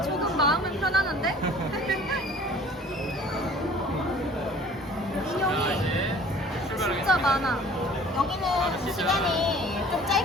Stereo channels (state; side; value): normal; both; correlation 0.49